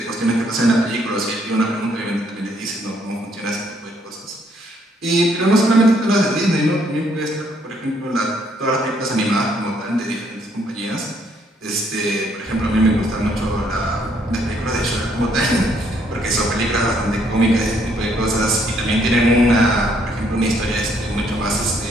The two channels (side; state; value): both; normal; correlation 0.69